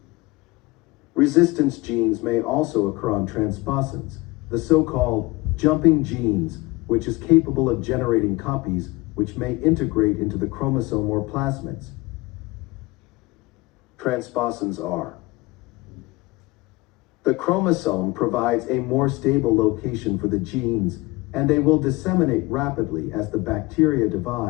Resistance genes may also occur on transposons, the so-called jumping genes, which is capable of generating copies which may integrate into the chromosome or plasmids. Transposons are: the chromosome provides a more stable location for the genes, and they will disseminate rapidly as the bacteria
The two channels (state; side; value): quieter; right; 22.7 dB